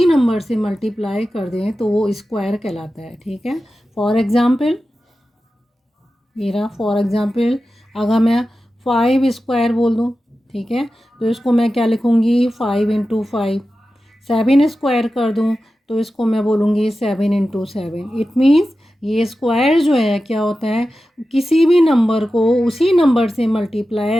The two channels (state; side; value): normal; both; correlation 0.93